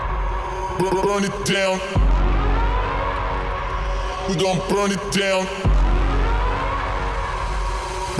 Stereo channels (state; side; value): identical; both; correlation 1.00